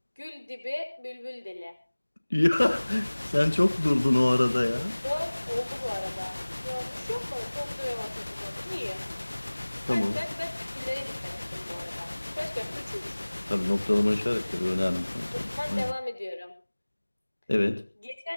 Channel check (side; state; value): both; inverted; correlation -1.00